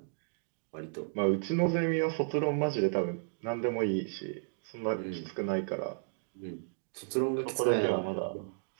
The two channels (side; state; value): left; silent; digital silence